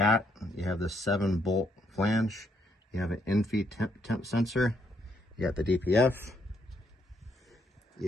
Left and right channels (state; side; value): normal; both; correlation 0.73